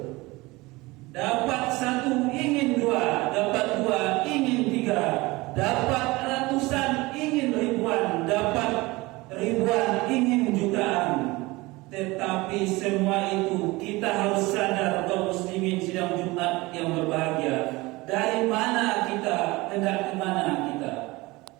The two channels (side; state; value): left; quieter; 22.0 dB